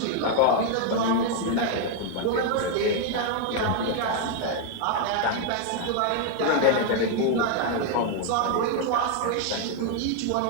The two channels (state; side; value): different; both; correlation 0.00